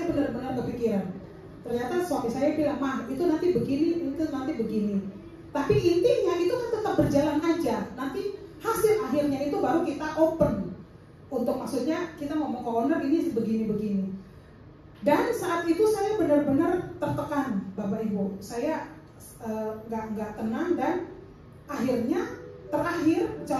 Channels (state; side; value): identical; both; correlation 1.00